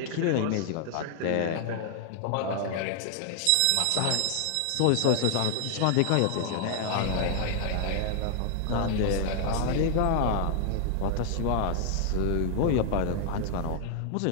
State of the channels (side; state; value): both; different; correlation 0.00